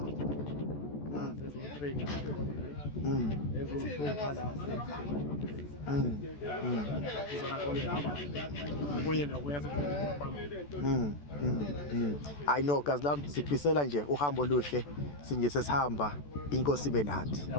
sezo-3 ezo-2 la I know kazi lami sifisela nje uhambo oluhle sinje sesihamba inkosi ibe nathi.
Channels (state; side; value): late; right; 14 ms